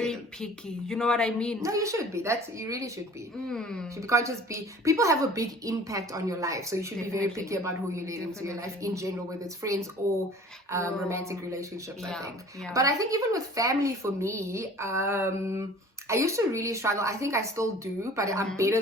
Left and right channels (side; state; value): both; normal; correlation 0.47